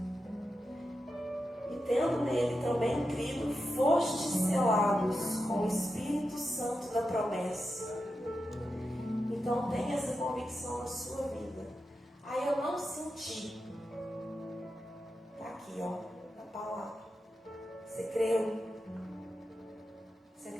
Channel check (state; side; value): normal; both; correlation 0.89